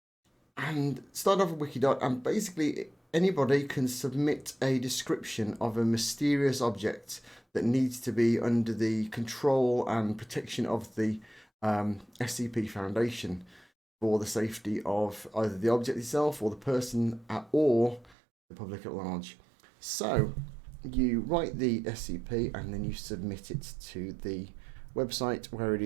start off with Wikidot, and basically anybody can submit a description of a mysterious object that needs to be under the control and protection of the SCP Foundation for the safety of either the object itself or the person or the public at large. So you write the SCP and then you submit it to the website where it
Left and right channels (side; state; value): left; drops out; at 18.2 s